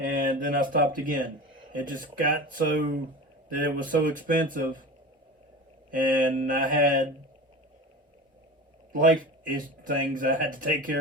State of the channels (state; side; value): normal; both; correlation 0.32